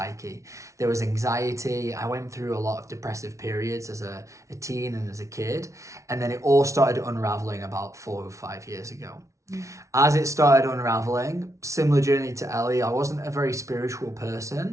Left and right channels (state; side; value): late; left; 0.14 ms